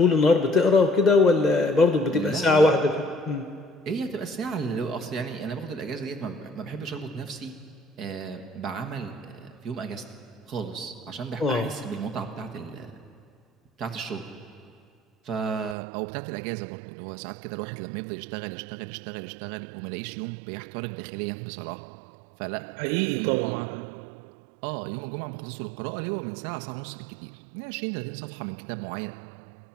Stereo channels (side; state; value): left; drops out; at 15.8 s